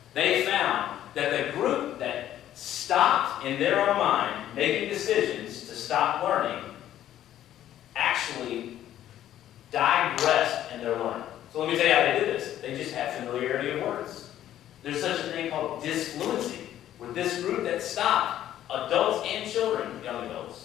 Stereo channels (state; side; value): quieter; right; 12.0 dB